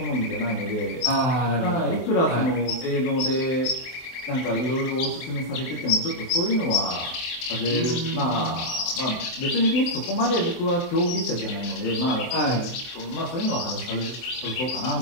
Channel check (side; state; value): right; late; 24 ms